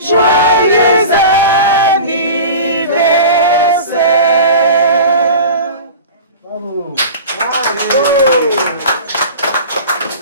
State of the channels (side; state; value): both; inverted; correlation -0.36